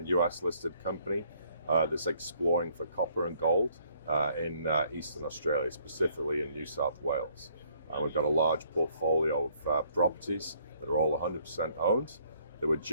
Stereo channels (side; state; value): both; inverted; correlation -0.66